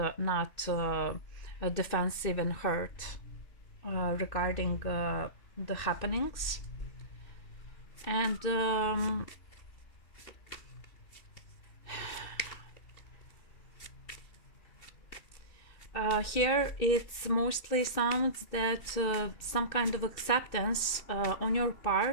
not defensive and hurt regarding the happenings. And here it's mostly sounds that some kind of acceptance on your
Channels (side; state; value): right; late; 2.6 ms